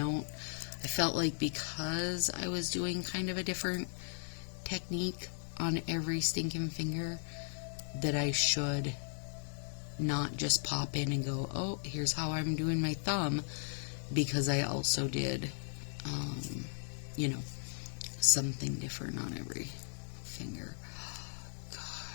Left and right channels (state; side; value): silent; right; 53 dB below the other